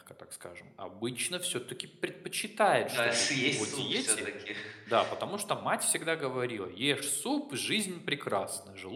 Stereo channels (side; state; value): both; identical; correlation 1.00